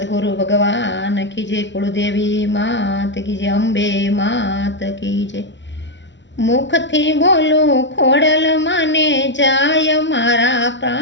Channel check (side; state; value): right; late; 0.53 ms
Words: भगवान की जय, कुलदेवी मात की जय, अंबे मात की जय। मुखथी बोलू खोडल माने जाय मारा